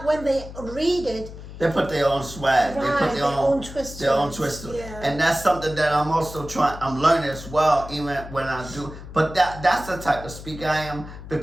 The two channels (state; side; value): noise; left; hum, 13 dB below the sound